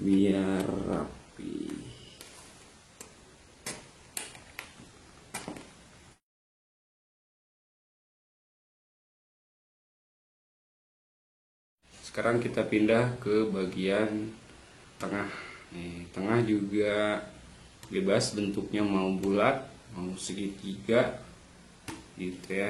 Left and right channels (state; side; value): identical; both; correlation 1.00